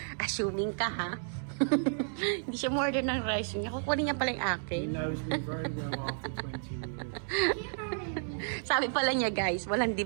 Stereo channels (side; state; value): left; silent; digital silence